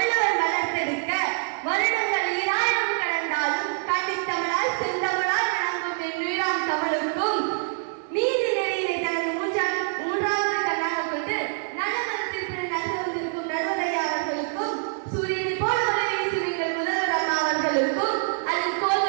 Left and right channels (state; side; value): silent; left; 61 dB below the other